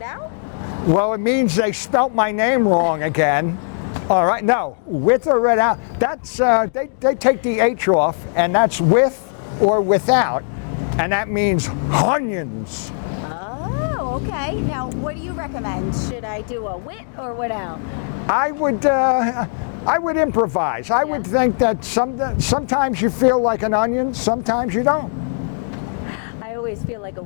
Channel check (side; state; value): right; silent; digital silence